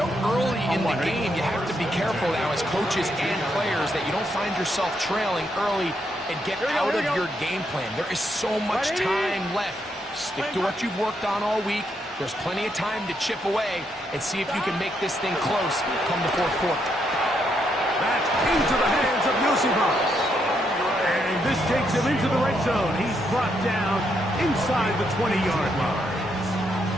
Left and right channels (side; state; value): both; normal; correlation 0.78